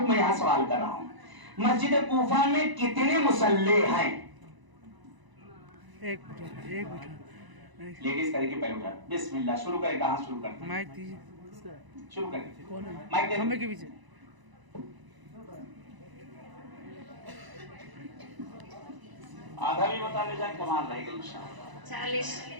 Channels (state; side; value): late; left; 1.0 ms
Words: मैं यहां सवाल कर रहा हूं, मस्जिद कूफा में कितने मुसल्ले हैं? एक मिनट लेडीज करके पहले उठा, बिस्मिल्लाह, शुरू करें, कहां शुरू करते हैं? माइक दीजिए। शुरू करें, कौन है? माइक दे, खंबे के पीछे। आधा भी बता ले जाए, कमाल रहेगा इंशाअल्लाह। 40